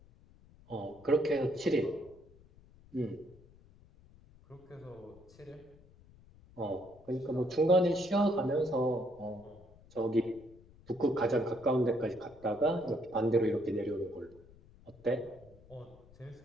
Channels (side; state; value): left; noise; rumble, 25 dB below the sound